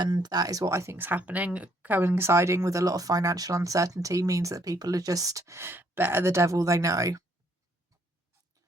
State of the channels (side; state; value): both; normal; correlation 0.68